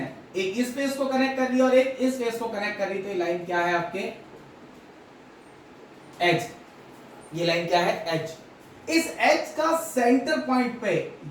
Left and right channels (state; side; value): identical; both; correlation 1.00